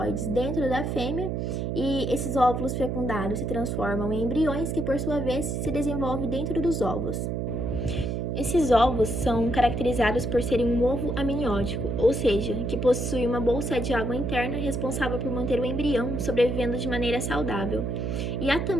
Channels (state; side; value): noise; right; hum, 1 dB below the sound